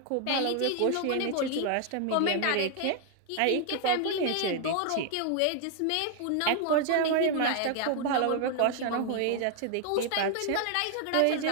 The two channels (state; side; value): different; both; correlation 0.00